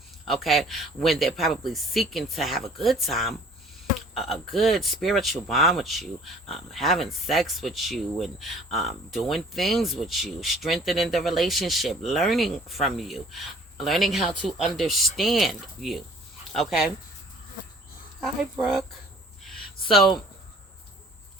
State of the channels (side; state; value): both; normal; correlation 0.52